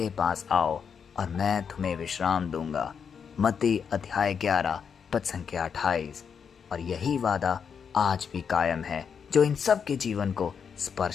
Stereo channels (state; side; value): quieter; right; 6.8 dB